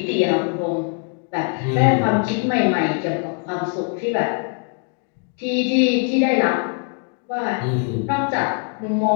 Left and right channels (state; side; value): quieter; right; 39.7 dB